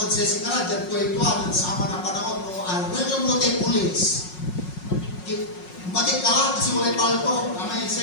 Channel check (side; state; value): right; late; 5.5 ms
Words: sa sikara, dyan ko ito, nagsama ng panahon, welcome mo tayo pulis. Batik ka lang kasi walay palto, amay